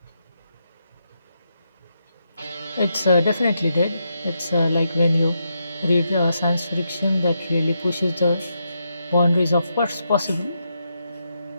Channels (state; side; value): inverted; both; correlation -0.82